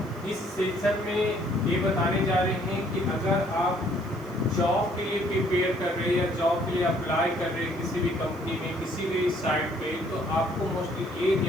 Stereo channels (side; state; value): left; noise; hiss, 27 dB below the sound